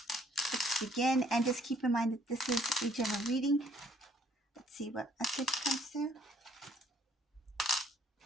Let's begin, and just keep in mind that this is a general reading. Let's see what message comes through.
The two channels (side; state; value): both; normal; correlation 0.64